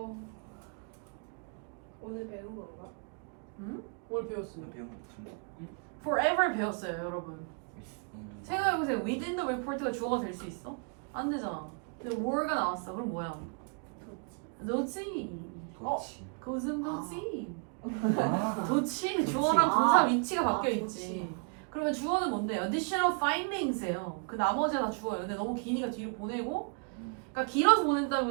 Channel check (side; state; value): left; quieter; 39.0 dB